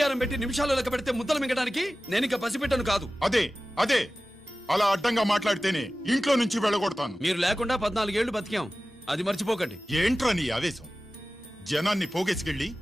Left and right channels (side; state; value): both; normal; correlation 0.96